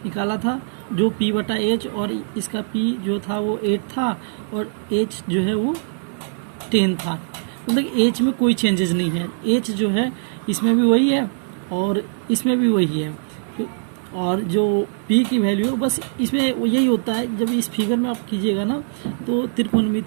निकाला था जो पी बटा एच, और इसका पी जो था वो 8 था और एच जो है वो 10 था, मतलब एच में कोई चेंजेस नहीं है, एच जो है इसमें भी वही है और इसमें भी वही है, और जो पी की वैल्यू बस इसमें यही होता है। जब इस फिगर में आप कीजिएगा ना तो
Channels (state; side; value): silent; left; 64 dB below the other